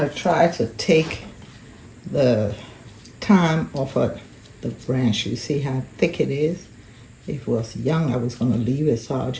try to take the thyme off of the branch. You see how thick it is? If it was young, I was going to leave it, so I'll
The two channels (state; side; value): identical; both; correlation 1.00